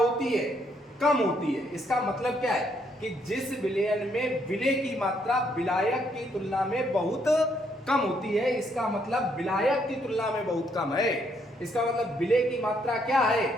है, कम होती है। इसका मतलब क्या है कि जिस विलयन में विलेय की मात्रा विलायक की तुलना में बहुत कम होती है, इसका मतलब विलायक की तुलना में बहुत कम है। इसका मतलब विलेय की मात्रा क्या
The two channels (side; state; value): both; normal; correlation 0.72